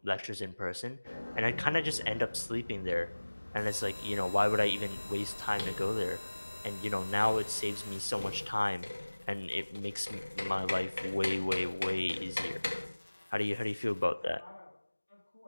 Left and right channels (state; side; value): inverted; both; correlation -1.00